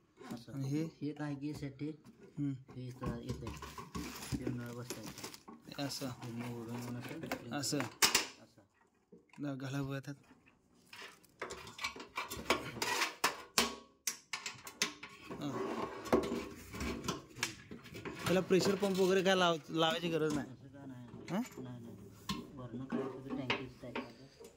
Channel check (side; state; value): both; identical; correlation 1.00